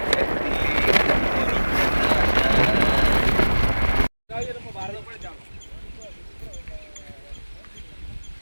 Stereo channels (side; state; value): both; inverted; correlation -1.00